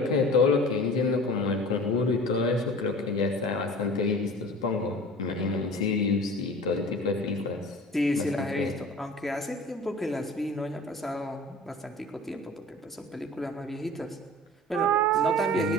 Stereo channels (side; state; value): both; normal; correlation 0.40